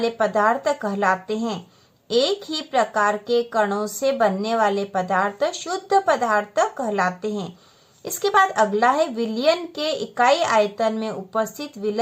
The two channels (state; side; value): identical; both; correlation 1.00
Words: पदार्थ कहलाते हैं। एक ही प्रकार के कणों से बनने वाले पदार्थ शुद्ध पदार्थ कहलाते हैं। इसके बाद अगला है विलयन के इकाई आयतन में उपस्थित